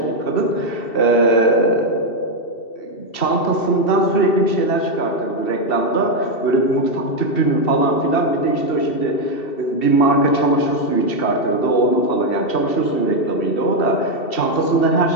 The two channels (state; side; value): late; right; 2.7 ms